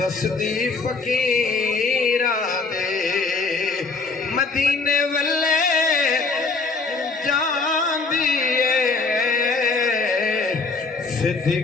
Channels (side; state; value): right; quieter; 4.1 dB